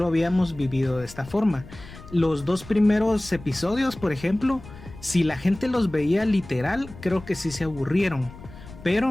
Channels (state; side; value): noise; left; rumble, 17 dB below the sound